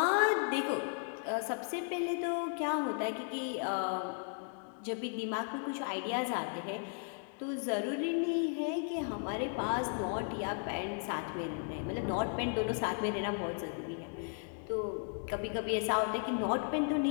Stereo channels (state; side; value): silent; right; 54 dB below the other